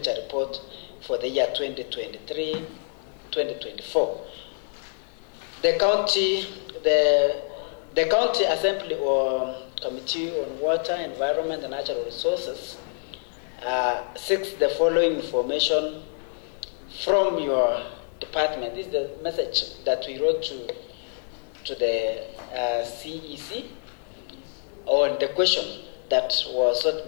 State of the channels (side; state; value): right; silent; 61 dB below the other